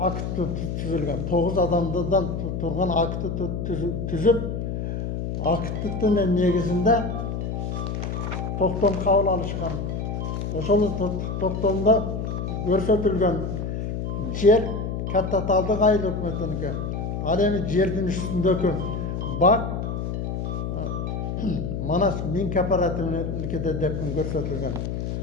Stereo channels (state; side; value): noise; left; hum, 3 dB below the sound